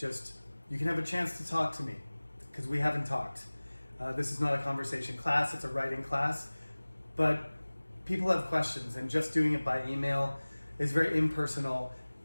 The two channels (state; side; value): inverted; both; correlation -1.00